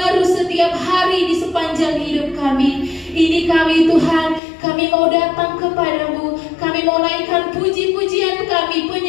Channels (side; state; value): right; drops out; at 4.4 s